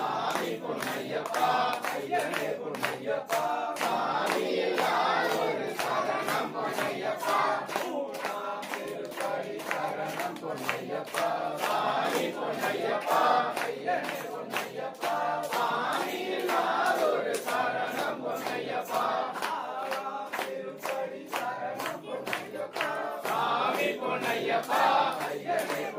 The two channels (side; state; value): both; identical; correlation 1.00